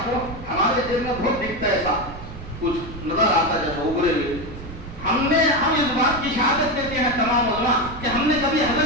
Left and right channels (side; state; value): right; noise; rumble, 13 dB below the sound